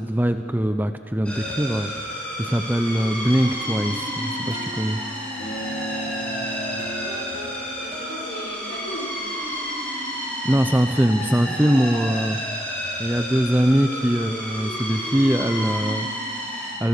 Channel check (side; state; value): both; normal; correlation 0.83